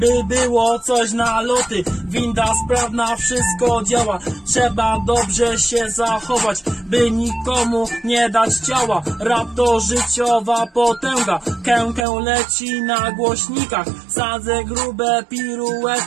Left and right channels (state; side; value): drops out; left; at 12.1 s